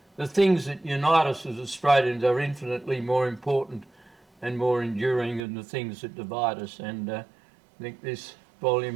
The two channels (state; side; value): drops out; left; at 5.5 s